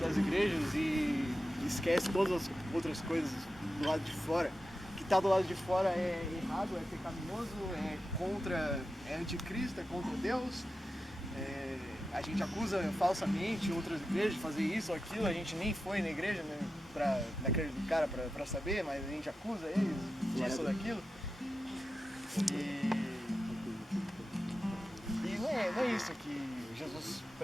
das igrejas e esquece todas as outras coisas do lado de fora. O que está do lado de fora é errado, é pecaminoso, é anticristo, é contra Deus. A gente acusa falsamente outras igrejas de fazer isso ou aquilo. A gente nem foi na igreja, né, naquele cara para saber, mas a gente acusa eles disso ou daquilo. E não é isso que Jesus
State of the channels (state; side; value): normal; both; correlation 0.91